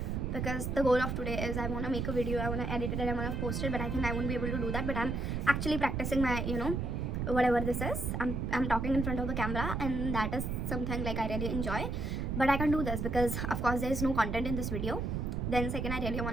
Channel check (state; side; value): noise; right; rumble, 1 dB below the sound